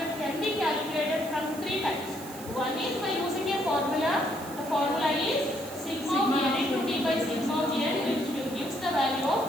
can be calculated from 3 types. One is by using a formula. The formula is sigma of n into d by sigma of n, which gives the value of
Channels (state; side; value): noise; right; hiss, 16 dB below the sound